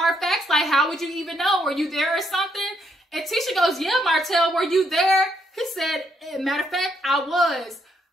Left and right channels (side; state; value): both; normal; correlation 0.75